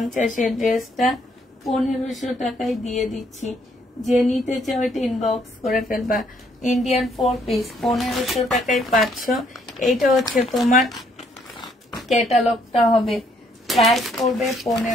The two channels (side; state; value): both; normal; correlation 0.68